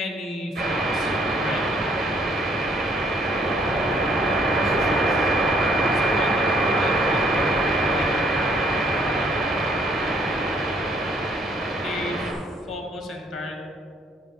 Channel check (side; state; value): both; normal; correlation 0.64